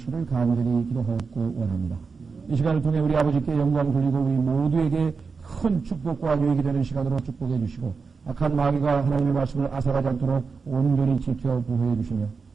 간절히 기도하고 원합니다. 이 시간을 통해 우리 아버지께 영광 돌리고 우리 모두에게 큰 축복과 유익이 되는 시간으로 축복해 주시고 악한 마귀가 하나님의 말씀을 앗아가지 않도록 온전히 지켜 보호해 주시며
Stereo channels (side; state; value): left; quieter; 4.9 dB